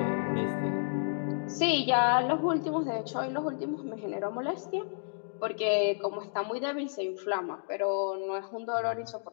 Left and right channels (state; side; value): silent; right; digital silence